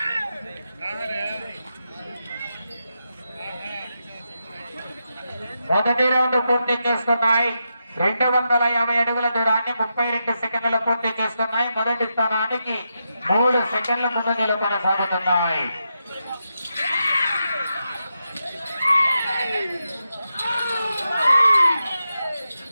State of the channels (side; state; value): both; inverted; correlation -0.86